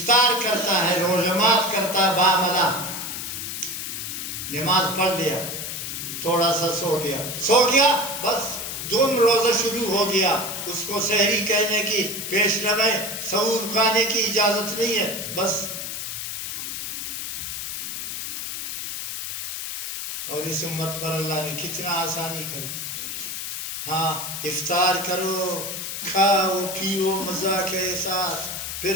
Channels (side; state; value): left; noise; hiss, 5 dB below the sound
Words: کرتا ہے، روزمات کرتا ہے، باملا نماز پڑھ لیا، تھوڑا سا سو گیا بس دوم روزہ شروع ہو گیا. اس کو سحری کہنے کی، پیش نمے سحور کھانے کی اجازت نہیں ہے. بس اور اس امت پر اللہ نے کتنا آسانی کر دی. افطار کرو، کھاؤ پیو مزہ کے ساتھ، پھر